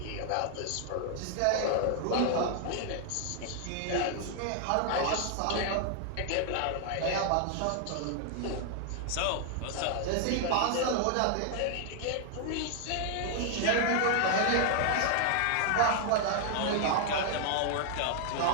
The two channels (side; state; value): both; different; correlation 0.00